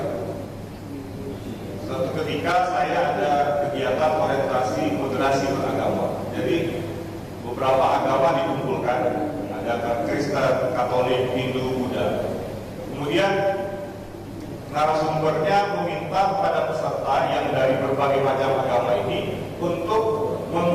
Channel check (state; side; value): identical; both; correlation 1.00